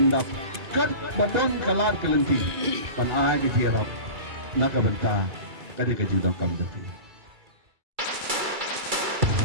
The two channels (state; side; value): late; left; 2.3 ms